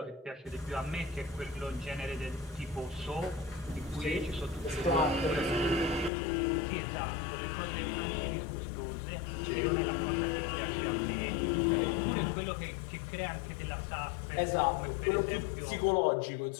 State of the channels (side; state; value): right; drops out; at 6.1 s